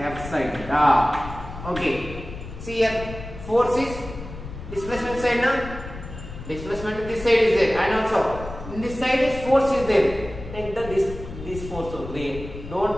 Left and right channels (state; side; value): noise; left; rumble, 12 dB below the sound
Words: sine theta. Okay. See here. Force is displacement side now. Displacement in this side is there. And also in this side is force is there. Take the this force only. Don't